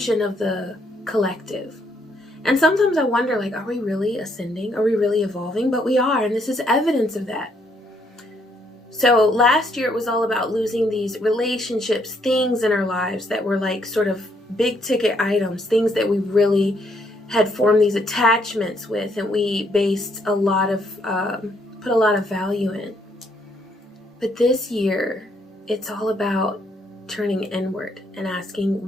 of the collective. And sometimes I wonder, like, are we really ascending? Are we really evolving? But we are, and this is evidence of that. So last year it was all about losing these relationships, things in our lives that were like sort of big ticket items, things that we really had formed these attachments with, and we based a lot of, put a lot of value in. But this year, it's all about turning inward and asking,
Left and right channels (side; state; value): both; normal; correlation 0.72